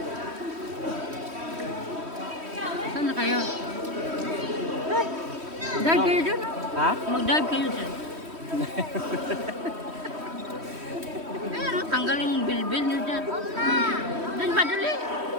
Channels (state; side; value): late; left; 3.1 ms